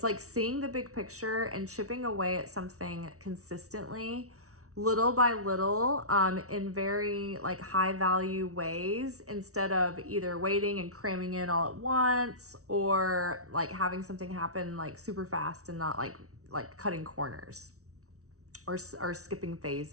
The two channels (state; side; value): late; left; 0.64 ms